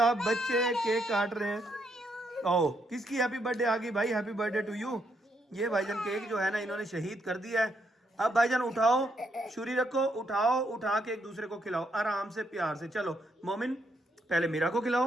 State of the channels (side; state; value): both; normal; correlation 0.76